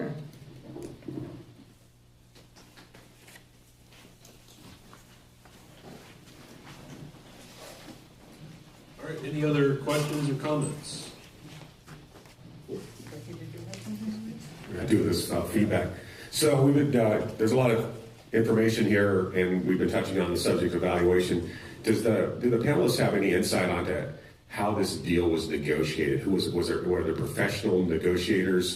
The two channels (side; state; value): both; identical; correlation 1.00